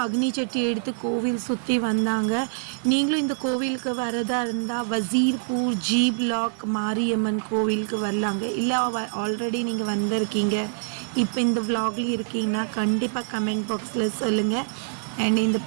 அக்னி சட்டி எடுத்து கோவில் சுற்றி வந்தாங்க. நீங்களும் இந்த கோவிலுக்கு வரதா இருந்தால் வசீர்பூர் ஜி பிளாக் மாரியம்மன் கோவிலுக்கு வரலாங்க. இல்லை ஆல்ரெடி நீங்கள் வந்திருக்கீங்க, இப்போ இந்த விலாக்லேயும் இருக்கீங்கன்னா கண்டிப்பாக கமெண்ட் பாக்ஸில் சொல்லுங்கள். அண்ட் இந்த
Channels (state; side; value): silent; left; digital silence